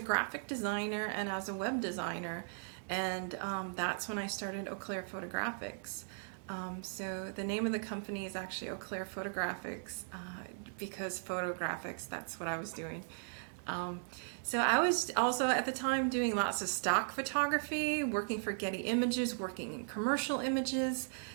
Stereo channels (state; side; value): silent; left; 53 dB below the other